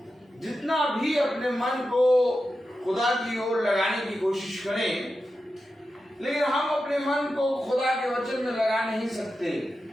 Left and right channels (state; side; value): normal; both; correlation 0.91